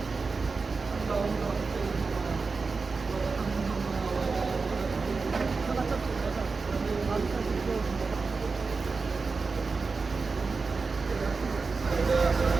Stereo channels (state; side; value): quieter; left; 4.4 dB